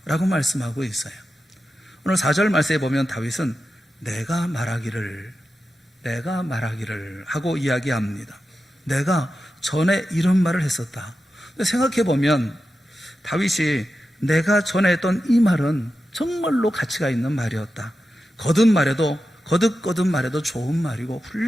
라고 말씀하고 있어요. 오늘 4절 말씀에 보면 다윗은 내가 말하기를 하고 이야기합니다. 내가 전에 이런 말을 했었다. 생각해 보면 다윗이 내가 전에 했던 이 말은 정말로 가치가 있는 말이었다. 거듭 말해도 좋은 말이고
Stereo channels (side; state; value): both; normal; correlation 0.91